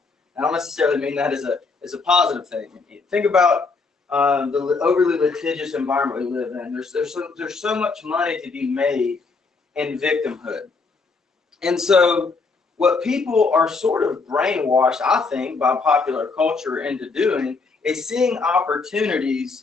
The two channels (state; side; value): quieter; right; 4.3 dB